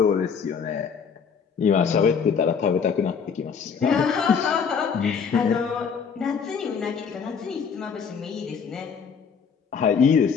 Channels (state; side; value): quieter; right; 6.4 dB